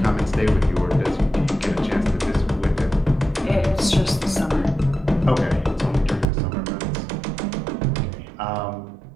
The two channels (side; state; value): left; drops out; at 6.2 s